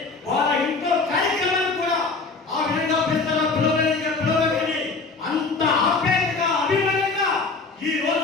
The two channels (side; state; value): right; quieter; 4.0 dB